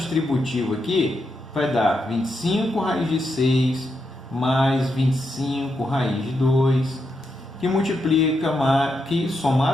aqui, vai dar 25 raiz de 6 mais 25 raiz de 2, que multiplica, que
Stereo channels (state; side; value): normal; both; correlation 0.83